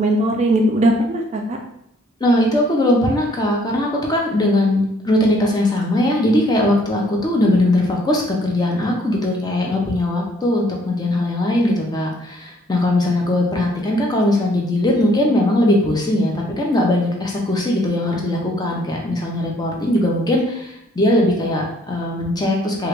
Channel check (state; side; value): normal; both; correlation 0.64